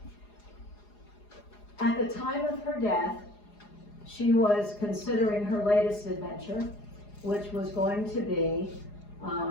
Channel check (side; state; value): right; late; 4.8 ms